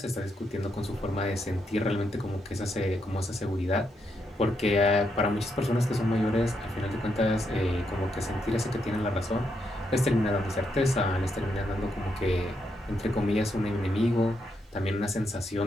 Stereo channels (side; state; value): both; normal; correlation 0.80